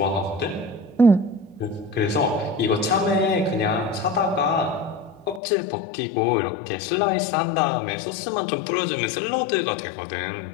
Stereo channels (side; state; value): right; drops out; at 5.4 s